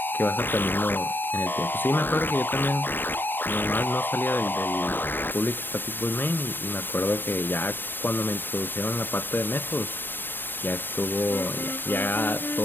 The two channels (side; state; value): right; late; 0.095 ms